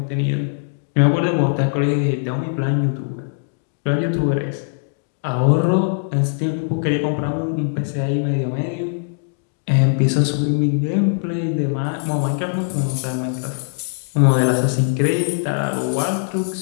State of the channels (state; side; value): silent; right; digital silence